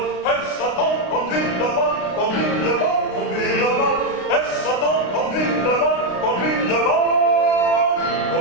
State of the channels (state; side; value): late; right; 33 ms